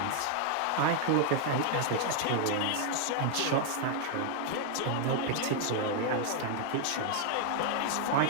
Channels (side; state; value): both; different; correlation 0.00